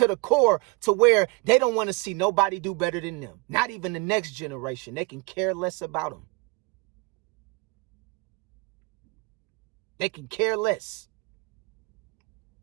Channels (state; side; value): quieter; left; 27.1 dB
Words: the core to where they don't want to see nobody do better than them. Not even the next generation. They can care less about them. They can care less.